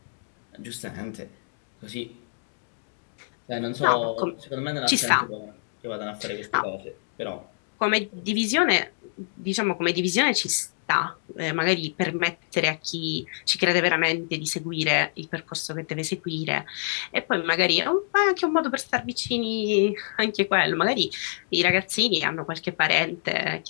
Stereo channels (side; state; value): right; silent; digital silence